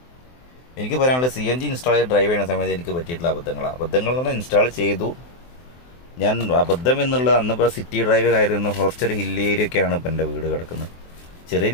എനിക്ക് പറയാനുള്ളത്, CNG ഇൻസ്റ്റാൾ ചെയ്ത് ഡ്രൈവ് ചെയ്യുന്ന സമയത്ത് എനിക്ക് പറ്റിയിട്ടുള്ള അബദ്ധങ്ങൾ എന്ന് പറഞ്ഞാൽ, ഇൻസ്റ്റാൾ ചെയ്തു ഞാൻ. അബദ്ധം എന്നുള്ളത് അന്നിപ്പോൾ സിറ്റി ഡ്രൈവ് ആയിരുന്നു. കുറച്ചൊരു ഹില്ലി ഏരിയ ഒക്കെയാണ് ഇപ്പം എൻ്റെ വീട് കിടക്കുന്നത്. ചെറിയ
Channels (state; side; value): late; right; 23 ms